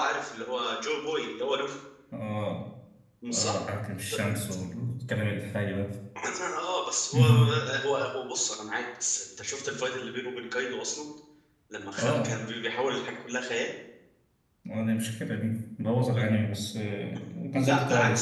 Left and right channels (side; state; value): both; identical; correlation 1.00